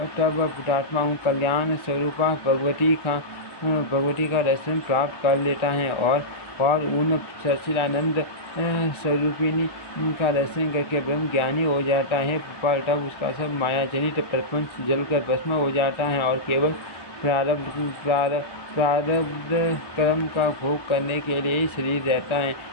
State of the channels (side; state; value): right; late; 1.2 ms